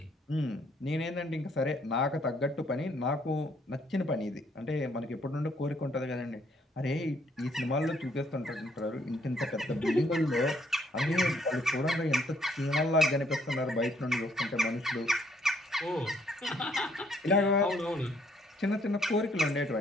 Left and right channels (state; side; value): normal; both; correlation 0.67